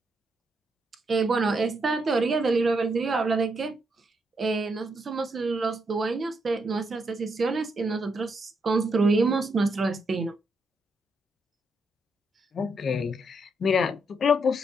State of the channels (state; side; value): normal; both; correlation 0.79